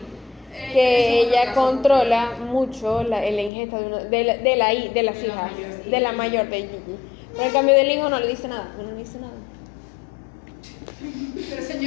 que es otro ella caso. controla mucho la ingesta de las hijas, de la mayor, de Gigi. Pero en cambio del hijo no le dice nada, no le dice nada. Pero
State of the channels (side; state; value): right; drops out; at 3.5 s